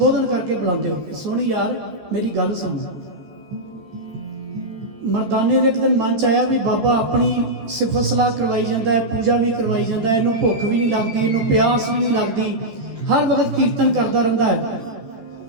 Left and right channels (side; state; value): left; late; 13 ms